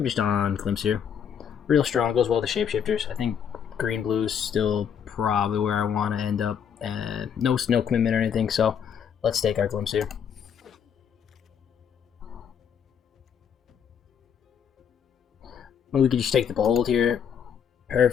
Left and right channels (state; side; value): quieter; right; 7.9 dB